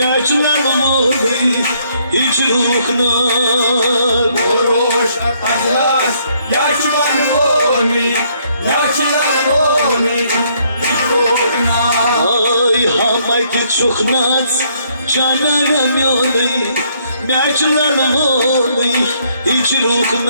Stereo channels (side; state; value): both; inverted; correlation -0.68